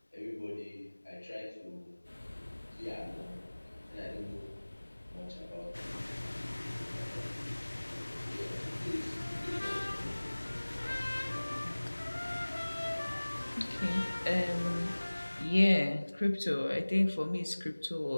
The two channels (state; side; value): inverted; both; correlation -1.00